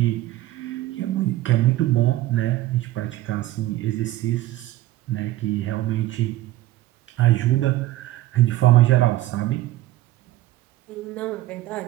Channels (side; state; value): left; quieter; 15.8 dB